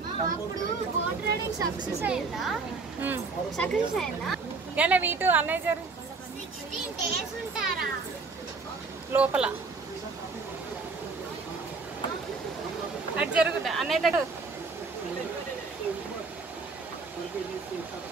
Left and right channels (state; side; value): quieter; left; 4.2 dB